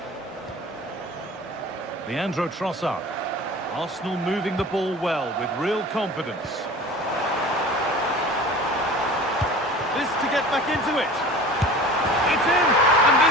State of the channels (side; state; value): both; normal; correlation 0.40